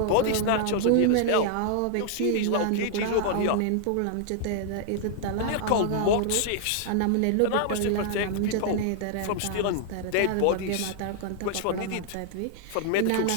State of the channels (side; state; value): both; different; correlation -0.01